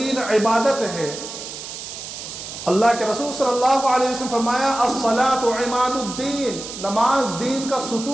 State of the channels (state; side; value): noise; right; hiss, 10 dB below the sound